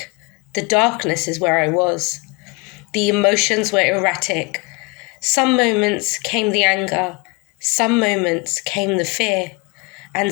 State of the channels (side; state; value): right; quieter; 28.3 dB